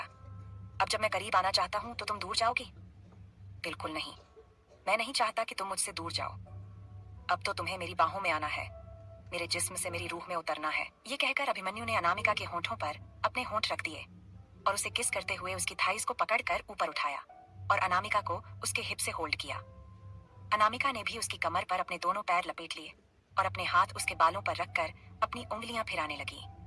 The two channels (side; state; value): both; identical; correlation 1.00